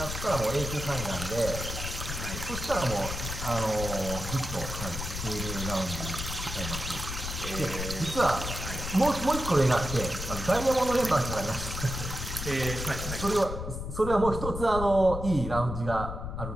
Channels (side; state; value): left; noise; rumble, 6 dB below the sound